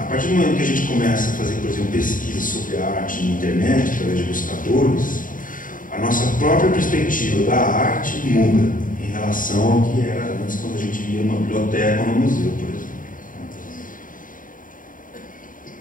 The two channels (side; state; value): right; late; 0.39 ms